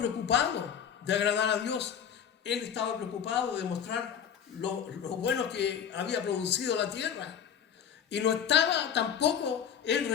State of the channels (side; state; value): right; quieter; 8.2 dB